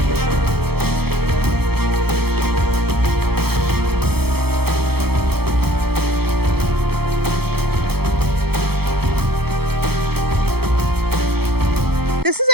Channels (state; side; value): late; left; 0.96 ms